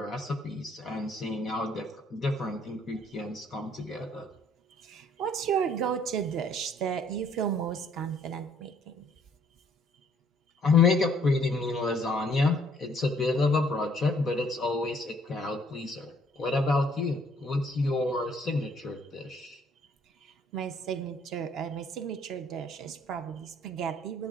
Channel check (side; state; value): both; normal; correlation 0.63